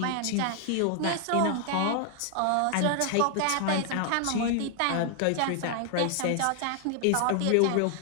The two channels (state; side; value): different; both; correlation 0.00